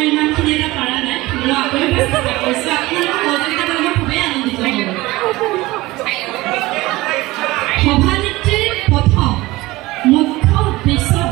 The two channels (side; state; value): left; quieter; 19.6 dB